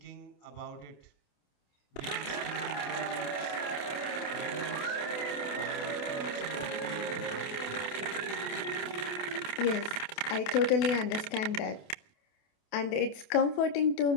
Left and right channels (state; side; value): late; right; 28 ms